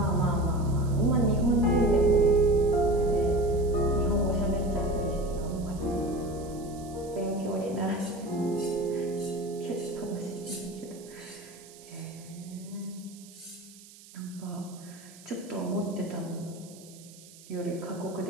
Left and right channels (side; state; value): right; noise; hiss, 21 dB below the sound